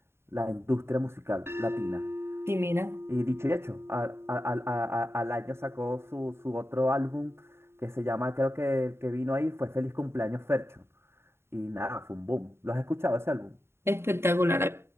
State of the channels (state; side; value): late; left; 0.12 ms